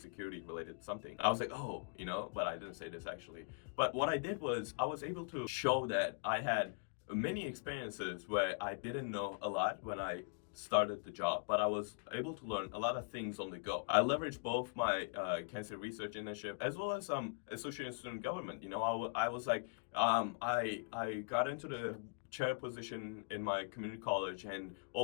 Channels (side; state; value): right; quieter; 37.4 dB